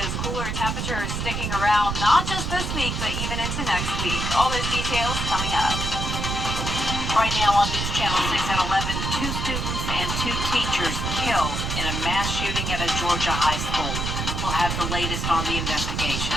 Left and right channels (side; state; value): right; noise; rumble, 2 dB below the sound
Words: cooler temperatures sticking around not just this week, but even into next week. All those details coming up. Right now on News Channel 6 at 11, 2 students and 2 teachers killed in a mass shooting at a Georgia high school. We'll have the latest on the investigation.